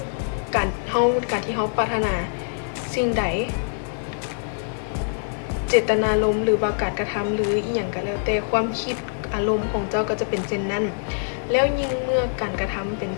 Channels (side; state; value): right; silent; digital silence